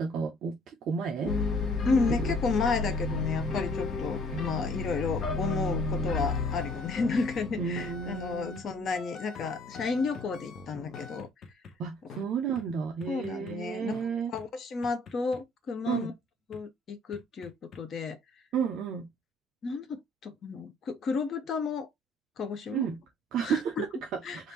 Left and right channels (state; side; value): normal; both; correlation 0.58